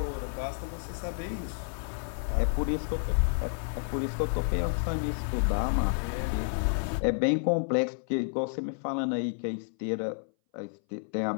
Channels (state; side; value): silent; right; 58 dB below the other